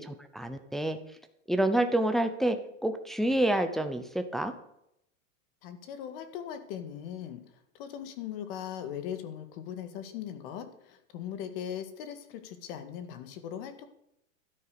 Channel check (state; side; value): normal; both; correlation 0.74